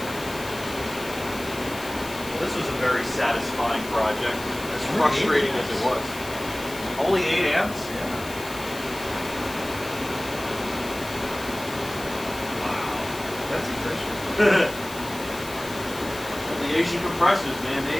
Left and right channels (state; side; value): noise; left; hiss, 14 dB below the sound